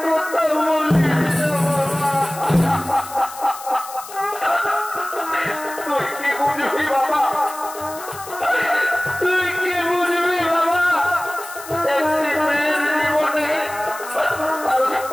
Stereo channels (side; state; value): left; noise; hiss, 14 dB below the sound